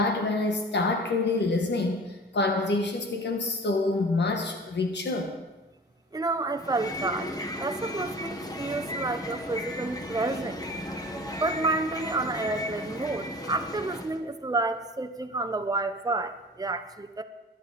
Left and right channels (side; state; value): both; normal; correlation 0.41